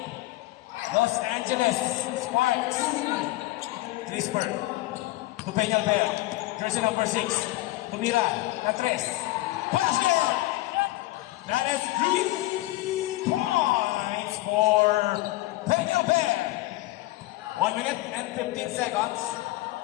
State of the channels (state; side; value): quieter; right; 18.6 dB